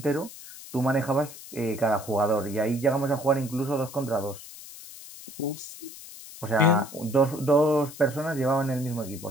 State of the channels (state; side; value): noise; left; hiss, 15 dB below the sound